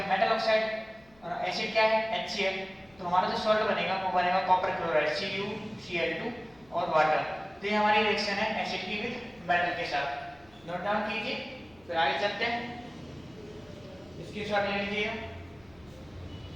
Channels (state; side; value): noise; left; hum, 29 dB below the sound